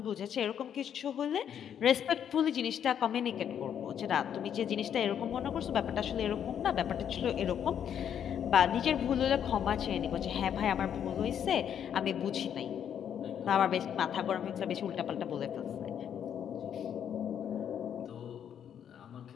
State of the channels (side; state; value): right; quieter; 8.9 dB